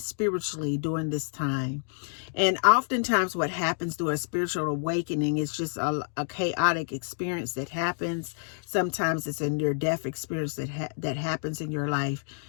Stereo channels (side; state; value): right; silent; digital silence